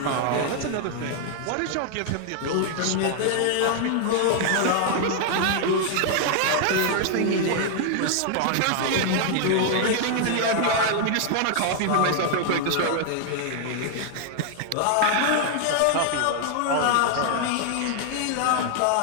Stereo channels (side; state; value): both; different; correlation 0.00